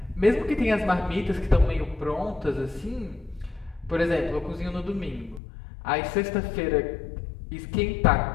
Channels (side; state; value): right; drops out; at 5.4 s